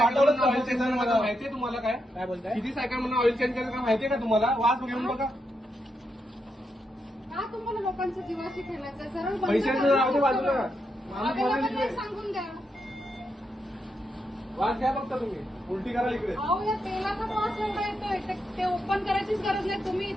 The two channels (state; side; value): normal; both; correlation 0.83